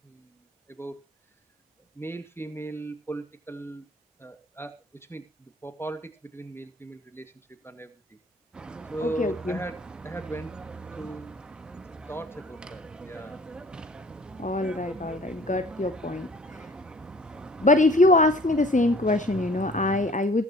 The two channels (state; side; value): normal; both; correlation 0.51